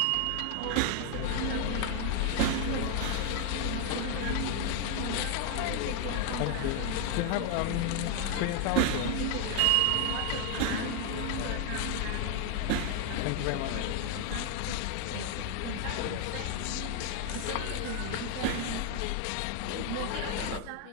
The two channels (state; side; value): different; both; correlation 0.00